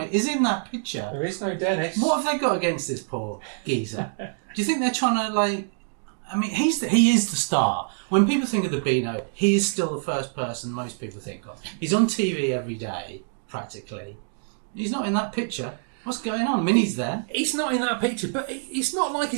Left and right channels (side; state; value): left; silent; digital silence